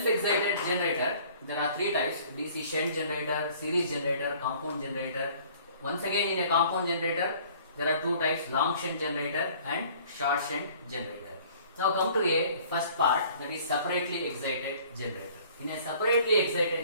generator, there are three types: DC shunt generator, series generator, compound generator. Once again, in a compound generator, there are two types: long shunt generator and short shunt generator. Now come to a first part, that is separately excited generator. In a separately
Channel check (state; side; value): inverted; both; correlation -0.53